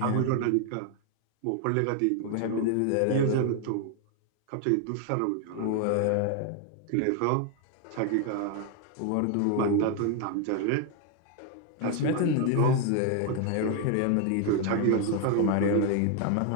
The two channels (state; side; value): different; both; correlation 0.01